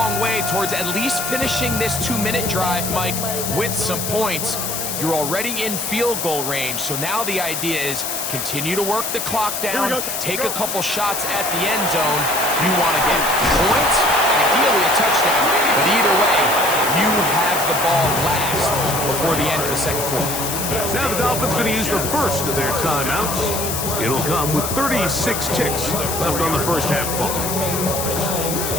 way towards at least finishing this 2-minute drive, Mike, with some points. You're already in field goal range, so now the idea is continue to work the clock down, take a couple shots at the end zone. You want to get points, ideally a touchdown, but either way, you have the ball last before the end of the second quarter. Now the Dolphins going to use the first of their timeouts. It'll come with 36 ticks left on the first half clock.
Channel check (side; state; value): left; noise; hiss, 3 dB below the sound